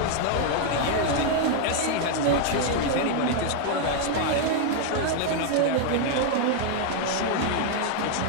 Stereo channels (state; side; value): different; both; correlation 0.00